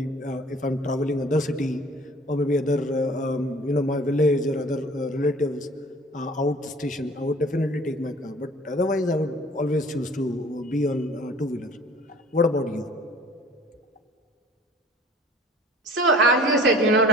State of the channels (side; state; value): both; normal; correlation 0.48